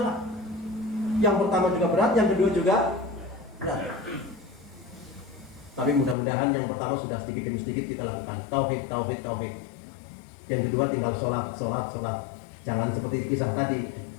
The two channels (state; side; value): drops out; right; at 6.2 s